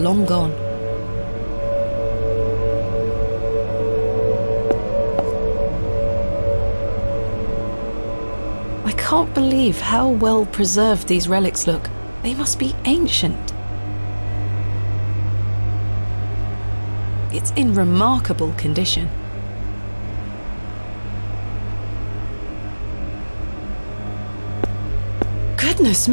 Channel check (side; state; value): both; inverted; correlation -1.00